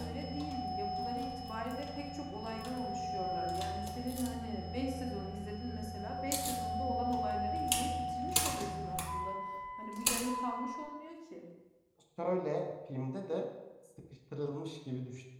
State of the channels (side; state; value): both; identical; correlation 1.00